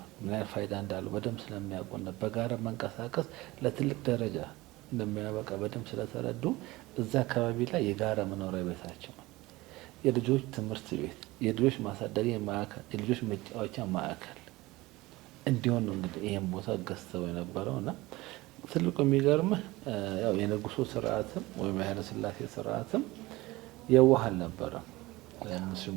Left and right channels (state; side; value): quieter; left; 20.1 dB